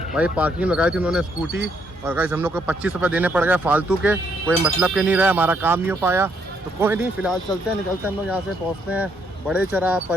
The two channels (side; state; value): both; normal; correlation 0.73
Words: भाई पार्किंग लगाई थी उन्होंने स्कूटी, और गाइस हम लोग को 25 रुपये देने पड़ गए फालतू के, कोई मतलब के नहीं रहा, हमारा काम नहीं हो पाया। तो कोई नहीं, फिलहाल चलते हैं, निकलते हैं हम लोग यहाँ से, पहुँचते हैं बड़े चौरा